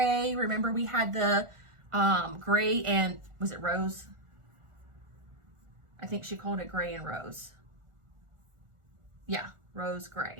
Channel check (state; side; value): late; left; 1.4 ms